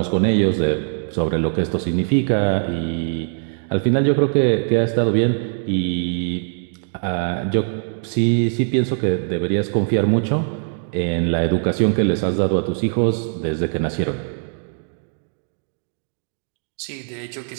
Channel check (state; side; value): silent; left; digital silence